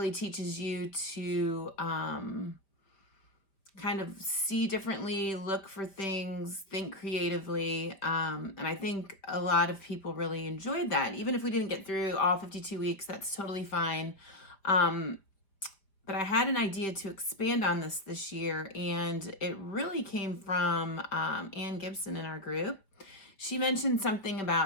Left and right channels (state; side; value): late; right; 5.0 ms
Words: teaches you to kind of see differently, look for things, think creatively. And I think a lot of people really enjoyed that. Even if we didn't get through all 52 weeks, that's totally fine. But I had an idea to expand on this year, and it really came from Ann Gibson in our group. She mentioned something